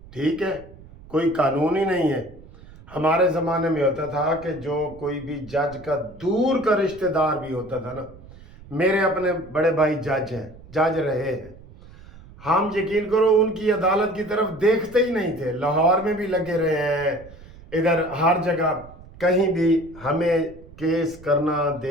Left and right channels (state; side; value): noise; right; rumble, 20 dB below the sound